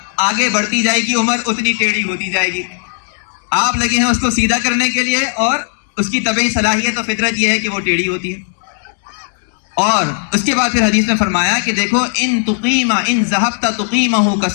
آگے بڑھتی جائے گی عمر اتنی ٹیڑھی ہوتی جائے گی. آپ لگے ہیں اس کو سیدھا کرنے کے لیے, اور اس کی طبعی صلاحیت و فطرت یہ ہے کہ وہ ٹیڑھی ہوتی ہے. اور اس کے بعد پھر حدیث میں فرمایا کہ دیکھو ان ذهبت تقیمہ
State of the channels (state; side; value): silent; right; digital silence